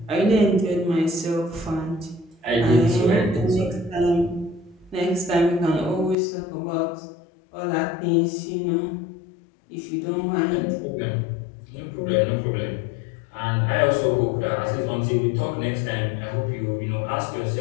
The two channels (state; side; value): drops out; right; at 6.2 s